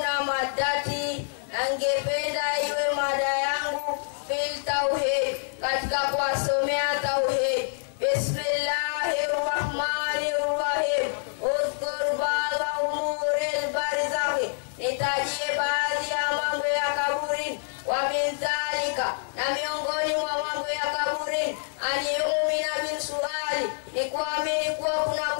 madati. Nangependa iwe mada yangu fil tauhid. Katika kuwasomea tauhid. Bismillahirrahmanirrahim. Udhkur ba'da umuril barzakhi. Nitajie baadhi ya mambo ya kaburi. Wa min dhalika. Na miongoni mwa mambo ya kaburi. Aniumina bin suali. Ni kuamini kuwa kuna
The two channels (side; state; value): right; silent; 60 dB below the other